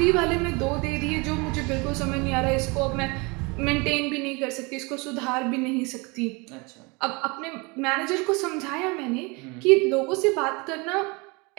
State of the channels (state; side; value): quieter; left; 27.9 dB